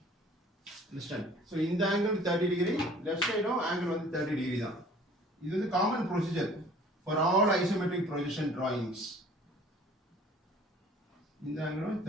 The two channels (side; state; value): both; normal; correlation 0.51